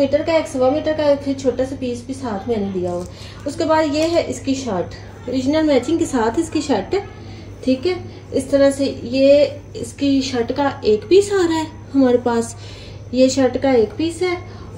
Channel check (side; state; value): both; identical; correlation 1.00